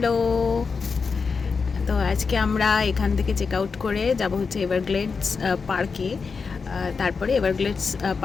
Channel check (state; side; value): quieter; right; 5.1 dB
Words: তো আজকে আমরা এখান থেকে চেক আউট করে যাব হচ্ছে এভারগ্লেডস পার্কে। তারপরে এভারগ্লেডস